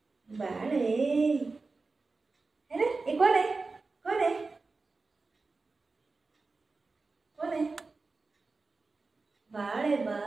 बाळ है ना हे कोण आहे कोण आहे कोण आहे बाळ आहे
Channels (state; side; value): quieter; left; 3.9 dB